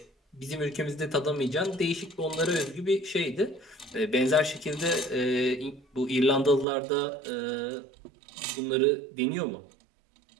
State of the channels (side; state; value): left; drops out; at 6.7 s